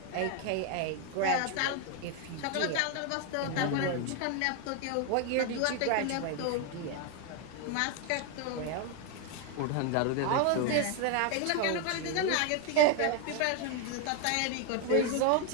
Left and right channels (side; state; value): both; different; correlation 0.01